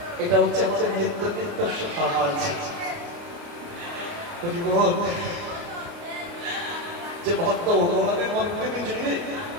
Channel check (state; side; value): late; left; 29 ms